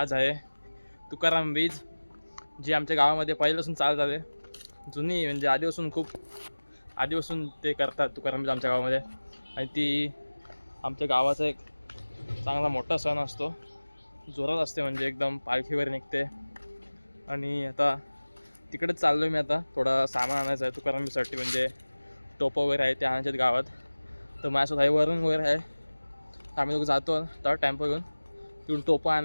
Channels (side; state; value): both; inverted; correlation -1.00